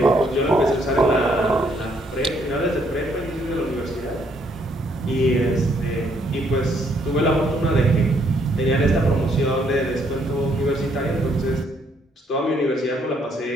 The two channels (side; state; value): both; normal; correlation 0.69